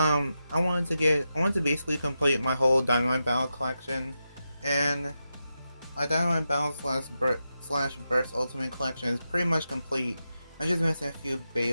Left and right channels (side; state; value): both; inverted; correlation -0.89